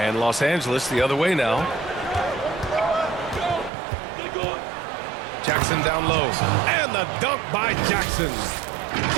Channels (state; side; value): drops out; left; at 3.7 s